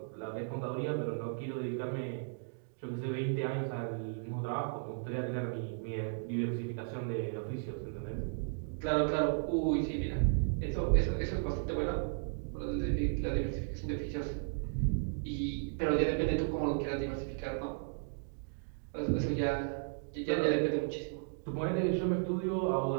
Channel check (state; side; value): silent; left; digital silence